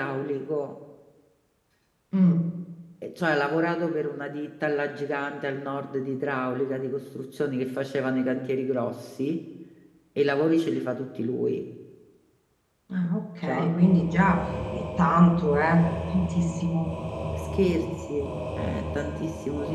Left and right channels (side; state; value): both; identical; correlation 1.00